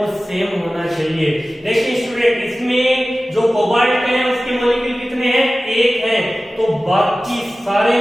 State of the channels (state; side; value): normal; both; correlation 0.96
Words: सेम होना चाहिए। देखिए स्टूडेंट, इसमें जो कोबाल्ट है उसके मॉलिक्यूल कितने हैं? 1 हैं, तो बाकी सारे